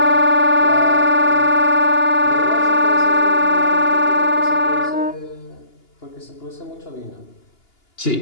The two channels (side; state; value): right; late; 2.8 ms